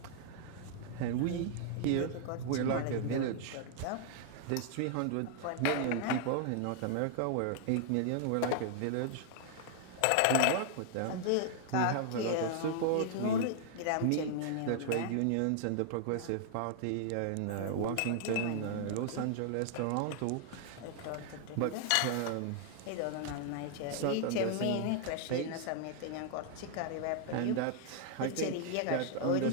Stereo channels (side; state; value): both; different; correlation 0.00